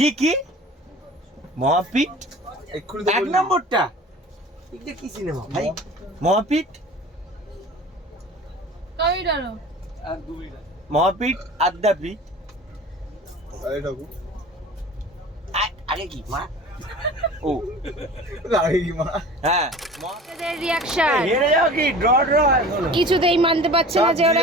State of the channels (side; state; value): both; normal; correlation 0.41